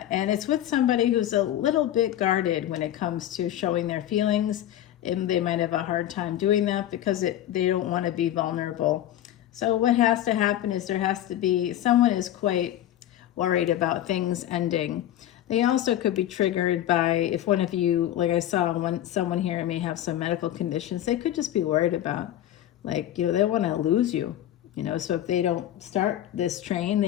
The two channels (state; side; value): quieter; right; 12.3 dB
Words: with somebody who's a little bit guarded when it comes to showing their feelings. And they might have a hard time doing that because they don't want to be vulnerable. So what has to happen is there has to be, someone is quite worried about things ending. They also could be triggered by, if one of you, like I saw someone here may have some medical conditions, they could just be worried about, like, you know, they want to lose you. You know, so if they don't start this train, they